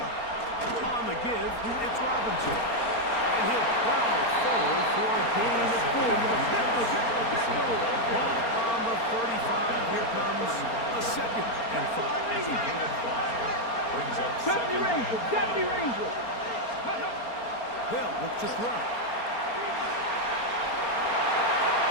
the give, it's Robinson. And he'll plow forward for a gain of 4 yards. Ball on the 35. Here comes a 2nd and 5. It's a gain of 5. Brings up 70 2nd and Rangers, 5. 70 Rangers. They'll look to throw.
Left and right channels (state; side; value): late; right; 4.3 ms